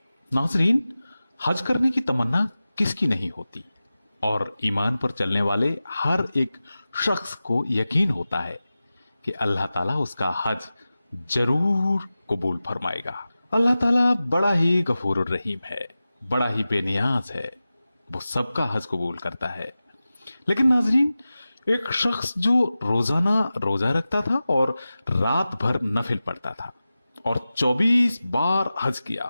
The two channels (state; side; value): inverted; both; correlation -0.95